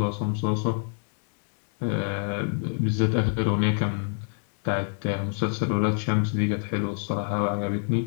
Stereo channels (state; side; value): silent; right; 60 dB below the other